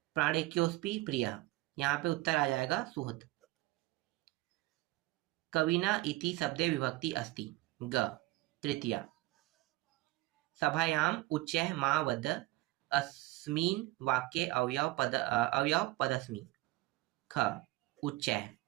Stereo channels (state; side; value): quieter; left; 19.2 dB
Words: प्राणेक्योस्पि प्रिय, यहाँ पे उत्तर आ जाएगा सुहृद। कविना इति शब्दे विभक्ति अस्ति ग तृतीया। सभायाम उच्चैः मा वद अस्मिन् वाक्ये अवयव पदस्मि ख उच्चैः।